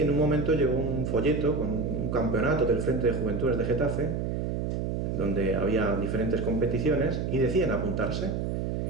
un momento llegó un folleto con un campeonato del Frente de Juventudes de Getafe, donde había diferentes competiciones, y decían apuntarse.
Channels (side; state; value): right; noise; hum, 1 dB below the sound